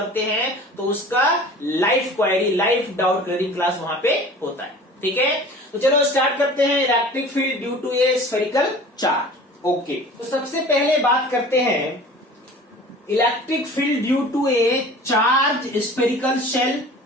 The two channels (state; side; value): normal; both; correlation 0.42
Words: हैं तो उसका live query, live doubt clearing class वहां पे होता है। ठीक है, तो चलो स्टार्ट करते हैं electric field due to a spherical charge. Okay, तो सबसे पहले बात करते हैं electric field due to a charge spherical shell